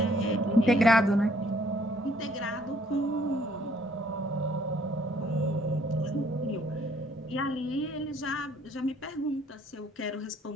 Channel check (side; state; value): both; normal; correlation 0.63